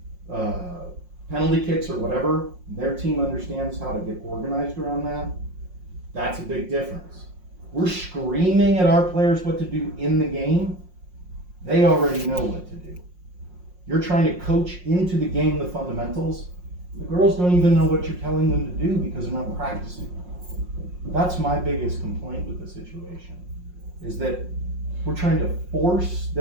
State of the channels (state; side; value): late; left; 5.6 ms